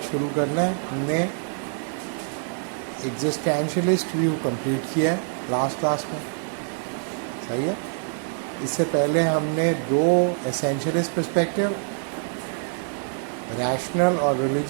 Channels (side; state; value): left; silent; 62 dB below the other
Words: شروع کرنا ہے. ہم نے ایگزسٹینشلسٹ ویو کمپلیٹ کیا ہے لاسٹ کلاس میں، صحیح ہے. اس سے پہلے ہم نے دو اسینشلسٹ پرسپیکٹیو، ریشنل اور